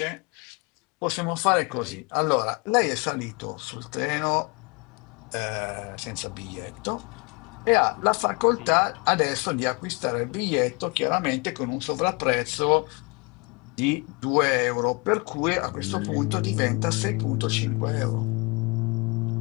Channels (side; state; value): right; quieter; 29.2 dB